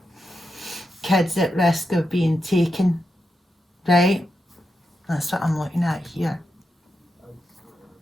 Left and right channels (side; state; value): both; normal; correlation 0.87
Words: Kids at risk of being taken, right? That's what I'm looking at here.